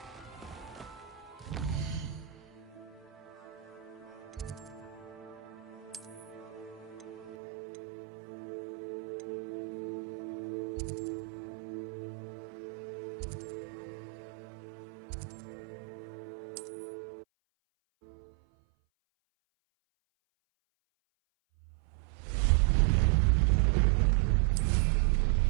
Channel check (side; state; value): left; drops out; at 7.4 s